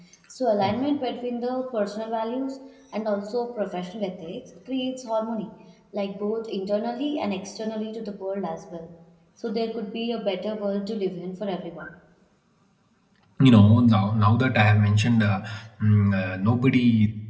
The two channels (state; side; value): identical; both; correlation 1.00